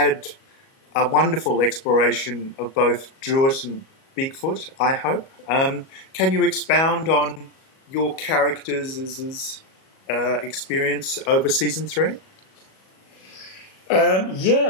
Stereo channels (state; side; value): late; right; 37 ms